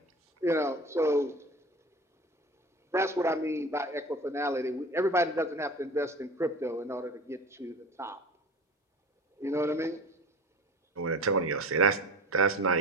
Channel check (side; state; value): both; normal; correlation 0.37